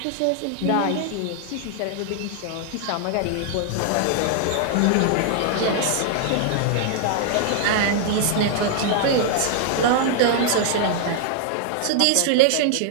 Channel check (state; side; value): different; both; correlation 0.00